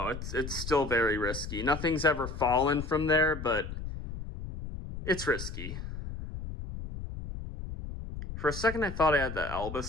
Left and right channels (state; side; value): noise; left; rumble, 8 dB below the sound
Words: It's still very risky. Nothing's ever fallen from there, but it's risky. For a second, I thought I had the